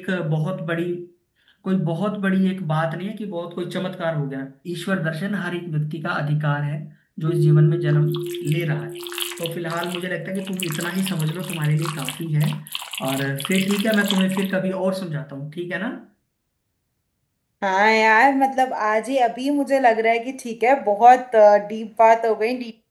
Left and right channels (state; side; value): identical; both; correlation 1.00